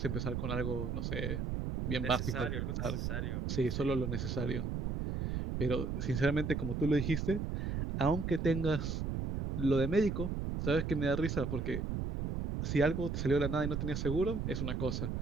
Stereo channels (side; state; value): right; noise; rumble, 2 dB below the sound